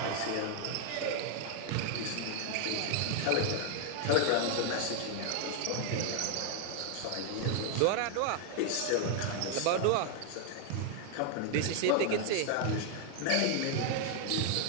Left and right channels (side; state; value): both; different; correlation 0.00